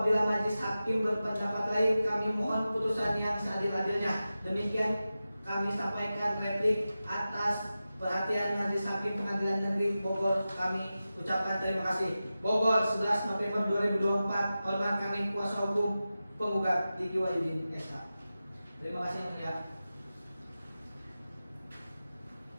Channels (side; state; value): both; inverted; correlation -0.94